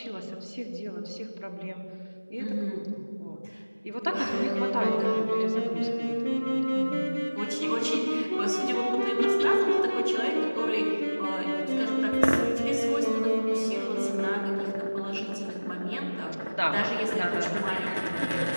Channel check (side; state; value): both; inverted; correlation -1.00